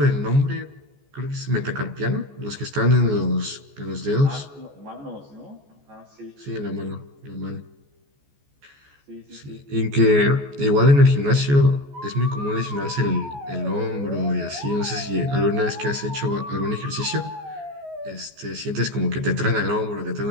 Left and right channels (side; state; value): left; late; 14 ms